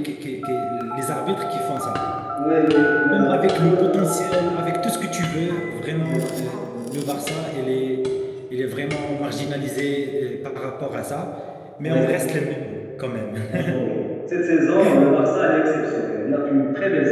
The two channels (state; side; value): identical; both; correlation 1.00